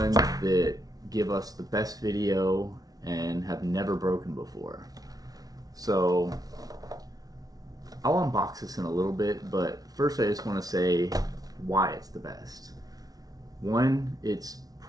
that give us the best video and have never broken before. So I'll unbox this in a little bit, but first I just want to say why it's the best. One, it's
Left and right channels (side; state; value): left; late; 0.18 ms